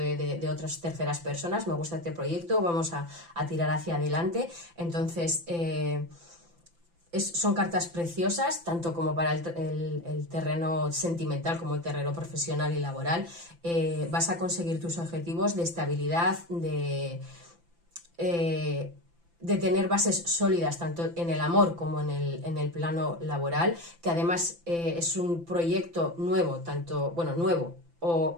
otras terceras personas, me gusta este proyecto, vamos a tirar hacia adelante. Entonces... son cartas preciosas, tanto como para el terreno sentimental como el terreno profesional y laboral. Vas a conseguir tus objetivos de estabilidad, de tener bases sólidas tanto en el amor como en el plano laboral, que además es un proyecto nuevo, nuevo,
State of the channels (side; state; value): left; late; 5.9 ms